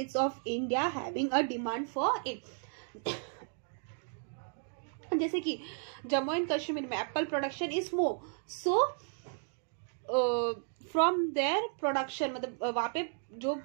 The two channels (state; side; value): silent; left; 55 dB below the other